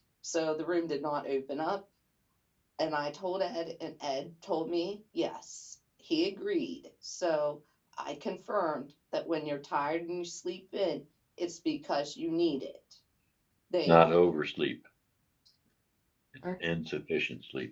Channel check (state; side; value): identical; both; correlation 1.00